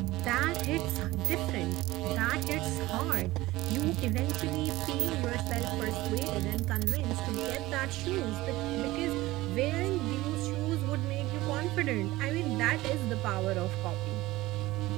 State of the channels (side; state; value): left; quieter; 18.4 dB